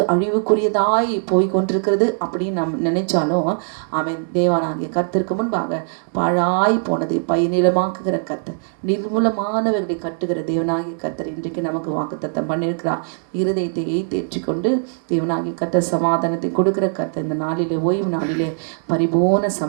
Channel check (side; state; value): left; silent; digital silence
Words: அழிவுக்குரியதாய் போய் கொண்டிருக்கிறது அப்படின்னு நாம் நினைச்சாலும் தேவனாகிய கர்த்தருக்கு முன்பாக பாழாய் போனதை பயனிடமாக்குகிற கர்த்தர், நிர்மூலமானவர்களை கட்டுகிற தேவனாகிய கர்த்தர் இன்றைக்கு நமக்கு வாக்குத்தத்தம் பண்ணியிருக்கிறார். இருதயத்தை தேற்றிக்கொண்டு தேவனாகிய கர்த்தர் சமாதானத்தை கொடுக்கிற கர்த்தர் இந்த நாளிலே, ஓய்வு நாளிலே பரிபூர்ண